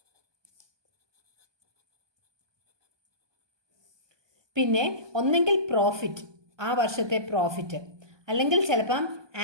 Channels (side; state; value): left; late; 1.2 ms